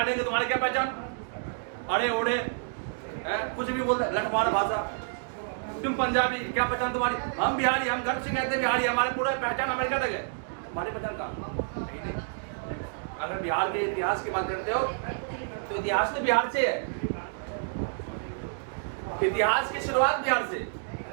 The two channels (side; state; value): left; silent; digital silence